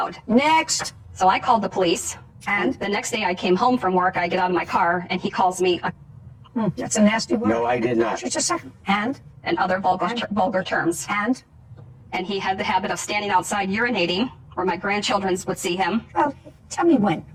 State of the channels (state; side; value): identical; both; correlation 1.00